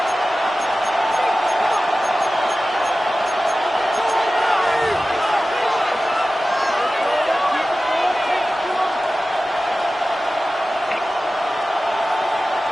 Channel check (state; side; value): normal; both; correlation 0.95